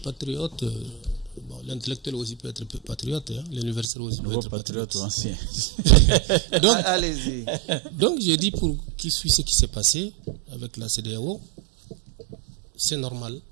patriote. Bon, l'intellectuel aussi peut être patriote, hein. L'universitaire aussi peut être patriote. Ancien. Donc, allez-y. Donc, j'ai dit pour qui suit ce qui s'est passé avec la CEDEAO, c'est normal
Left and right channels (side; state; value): left; drops out; at 3.9 s